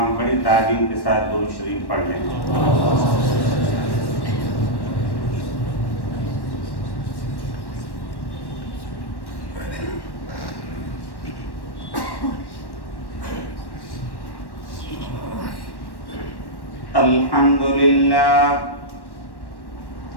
بڑی تعظیم کے ساتھ درود شریف پڑھ لیں۔ الحمد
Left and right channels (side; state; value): right; late; 1.1 ms